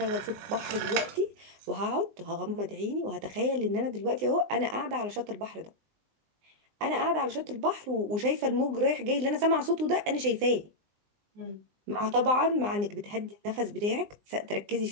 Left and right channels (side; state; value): left; late; 20 ms